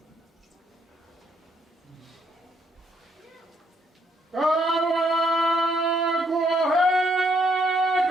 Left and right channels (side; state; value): both; normal; correlation 0.71